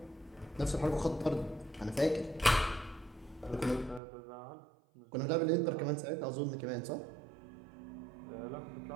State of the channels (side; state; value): left; drops out; at 4.0 s